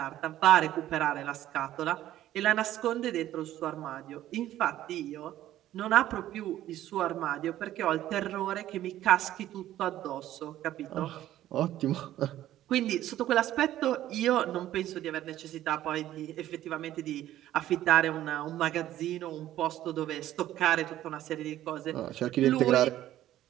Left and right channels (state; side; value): quieter; left; 13.3 dB